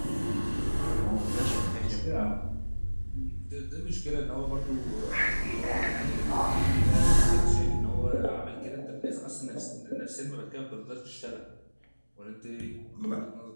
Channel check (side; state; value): both; inverted; correlation -1.00